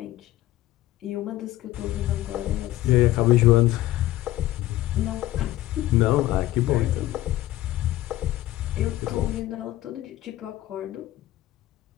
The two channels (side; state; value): right; quieter; 15.6 dB